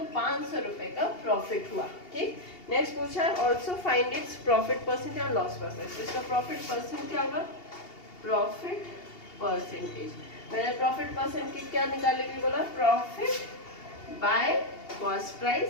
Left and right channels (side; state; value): right; late; 2.8 ms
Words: 500 रुपए का प्रॉफिट हुआ, ठीक। नेक्स्ट पूछा है also find its profit percent या लॉस परसेंट, तो इसका प्रॉफिट परसेंट क्या होगा प्रॉफिट परसेंटेज। मैंने प्रॉफिट परसेंट की क्या निकालने के लिए बोला profit by cost price